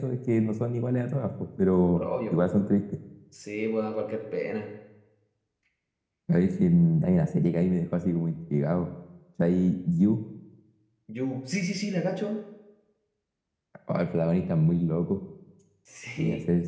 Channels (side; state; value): both; identical; correlation 1.00